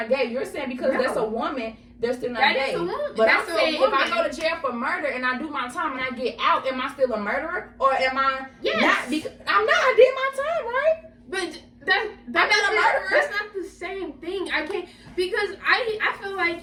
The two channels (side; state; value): both; identical; correlation 1.00